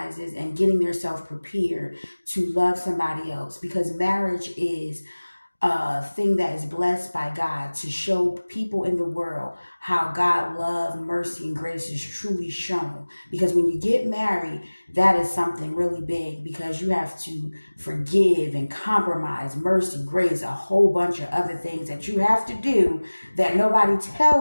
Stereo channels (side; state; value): both; inverted; correlation -1.00